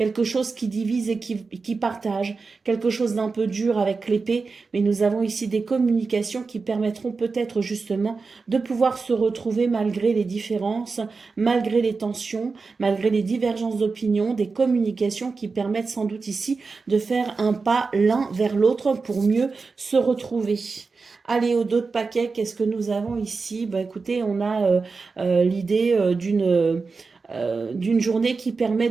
chose qui divise et qui partage, quelque chose d'un peu dur avec l'épée, mais nous avons ici des communications qui permettront peut-être justement de pouvoir se retrouver malgré les différences, malgré les tensions, malgré les divergences d'opinion, des communications qui permettent sans doute ici de faire un pas l'un vers l'autre pour mieux se retrouver. Allez, au dos de paquet, qu'est-ce que nous avons ici? Ben, écoutez, on a l'idée d'une journée qui permet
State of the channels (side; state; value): left; quieter; 4.4 dB